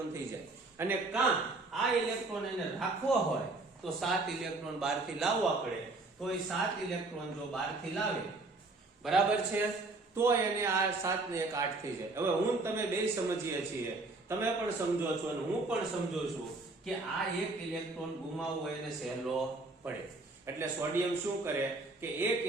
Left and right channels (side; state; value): left; quieter; 3.2 dB